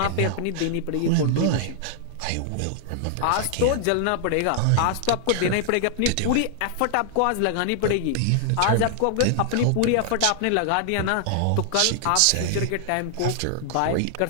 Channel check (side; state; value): both; different; correlation -0.01